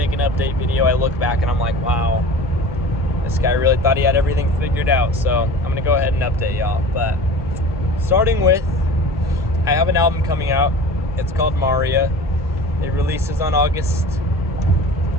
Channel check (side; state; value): both; normal; correlation 0.38